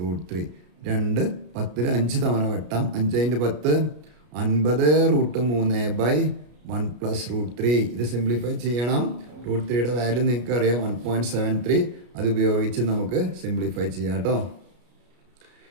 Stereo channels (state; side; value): late; left; 33 ms